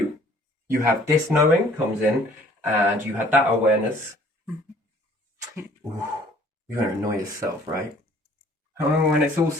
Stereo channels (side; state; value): both; normal; correlation 0.56